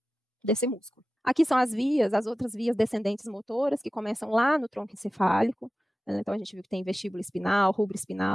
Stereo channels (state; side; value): normal; both; correlation 0.95